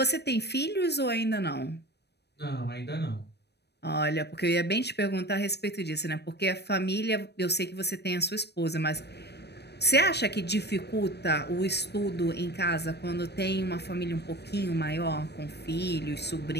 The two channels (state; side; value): late; right; 0.49 ms